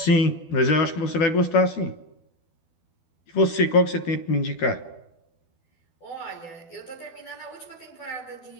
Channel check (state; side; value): late; right; 12 ms